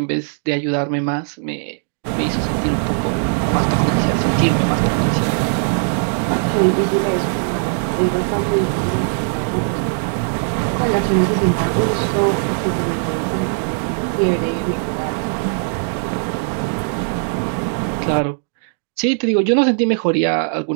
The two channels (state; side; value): silent; left; digital silence